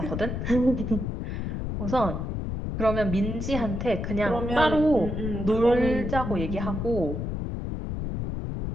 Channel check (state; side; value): noise; left; rumble, 3 dB below the sound